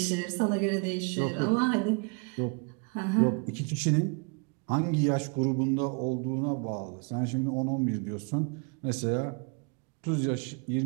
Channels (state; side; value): quieter; left; 34.5 dB